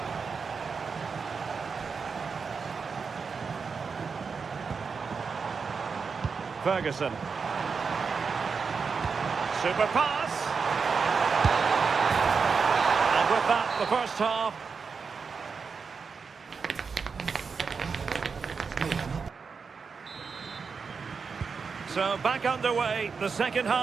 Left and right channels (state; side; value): quieter; left; 5.3 dB